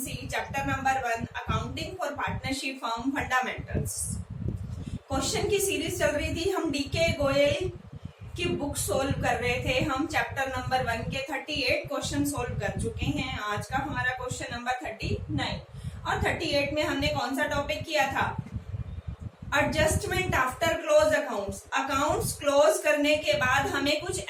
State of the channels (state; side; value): identical; both; correlation 1.00